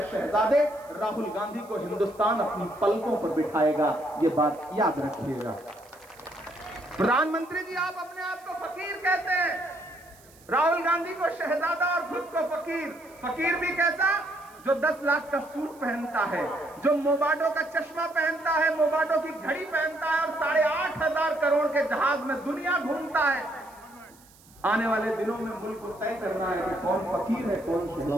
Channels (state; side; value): noise; right; hiss, 26 dB below the sound